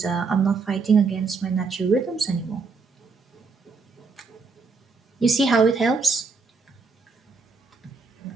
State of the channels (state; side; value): quieter; left; 4.5 dB